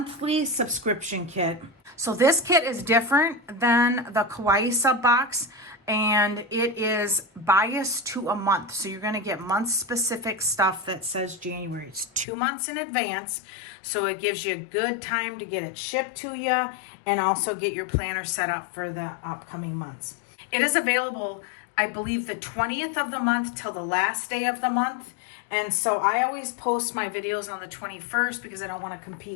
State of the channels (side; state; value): right; drops out; at 12.2 s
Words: subscription kit. So this kit is different than the Kawaii sub box, and it is biased to a month. So you're going to get month specific stuff that says January. It's 2 months in advance, so it gives you a good time to get it shipped to you and also get your planner set up for the upcoming months. It is available, I believe, the 20th of the month till the last day of the month. And so I always post my videos on the 21st because I don't want to